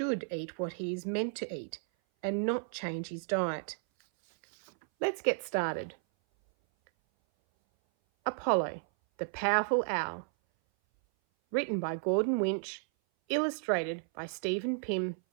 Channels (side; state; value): left; silent; 56 dB below the other